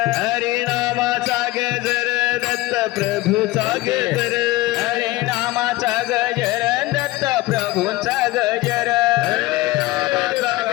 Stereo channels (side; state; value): right; quieter; 18.7 dB